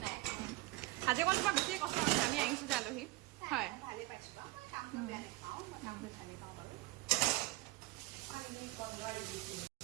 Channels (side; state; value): left; quieter; 19.9 dB